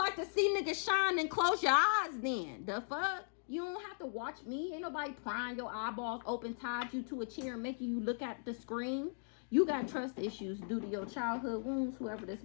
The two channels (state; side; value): silent; right; digital silence